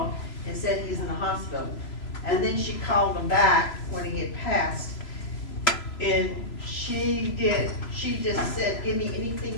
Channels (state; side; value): late; right; 3.0 ms